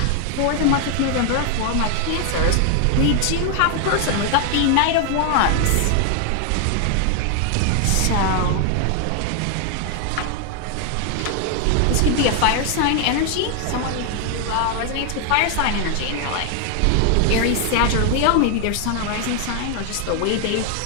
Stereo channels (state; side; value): different; both; correlation 0.00